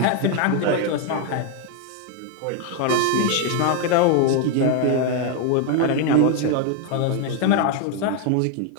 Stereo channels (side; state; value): both; different; correlation 0.01